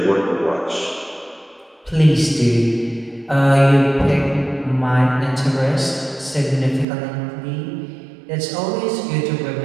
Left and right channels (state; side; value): drops out; left; at 6.9 s